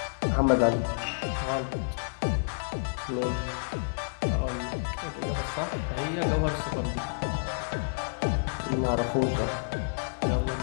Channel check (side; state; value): right; silent; digital silence